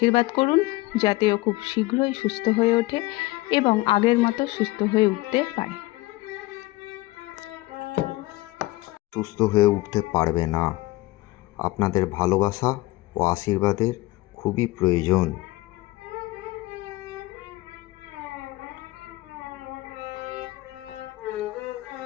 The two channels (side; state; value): right; quieter; 19.8 dB